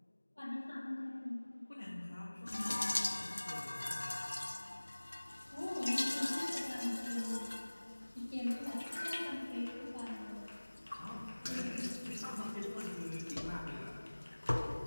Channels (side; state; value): both; inverted; correlation -1.00